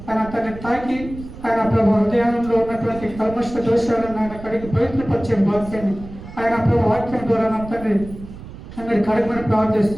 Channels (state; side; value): noise; right; rumble, 14 dB below the sound